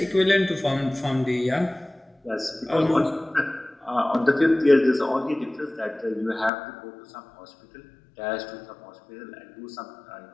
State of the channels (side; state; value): right; drops out; at 6.5 s